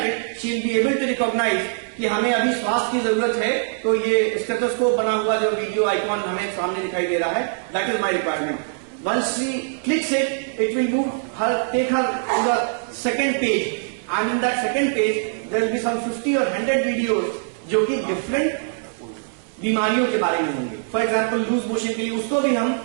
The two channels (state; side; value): silent; left; 64 dB below the other